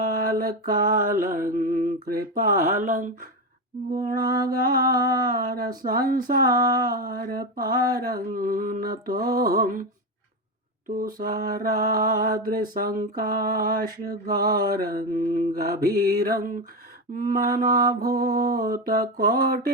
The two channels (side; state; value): both; normal; correlation 0.14